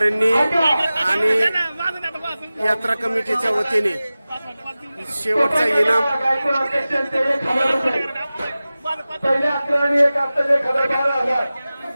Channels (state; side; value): inverted; both; correlation -0.96